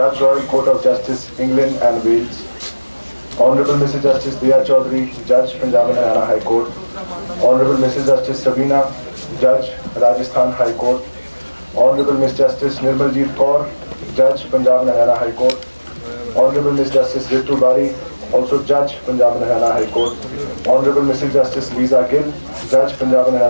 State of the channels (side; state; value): both; inverted; correlation -1.00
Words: Royal Court of Justice, England and Wales. Honorable Mr. Justice Diya Chaudhary, Judge Punjab and Haryana High Court. Honorable Mrs. Justice Sabina, Judge Rajasthan High Court. Honorable Ms. Justice Nirmaljeet Kaur, Judge Punjab and Haryana High Court. Honorable Ms. Justice Ritu Bari, also Judge Punjab and Haryana High Court. Honorable Mrs. Justice Lisa Gill, Judge Punjab and